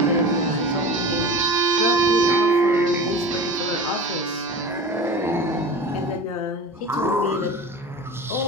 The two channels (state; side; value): normal; both; correlation 0.33